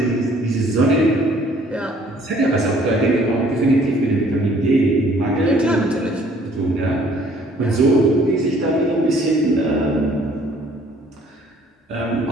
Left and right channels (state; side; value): normal; both; correlation 0.58